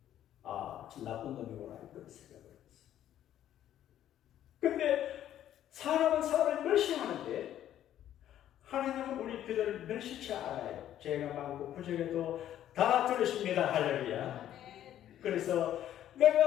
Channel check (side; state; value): right; quieter; 11.6 dB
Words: 아, 참 나쁜 놈이구나 이런 생각을 했어요. 근데 사람은 사람을 멸시하는데 하나님은 우리 그들을 멸시치 않아요. 죄가 많고 부족해도 다 들으십니다. 할렐루야. 그래서